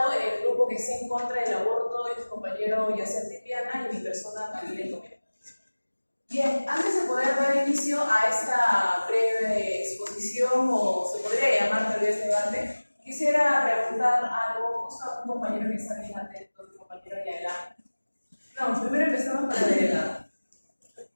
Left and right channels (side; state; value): both; inverted; correlation -1.00